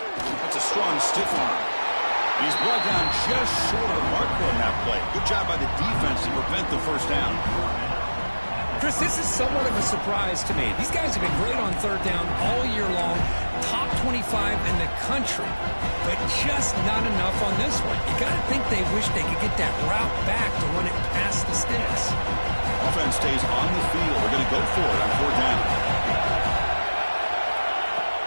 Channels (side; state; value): both; inverted; correlation -1.00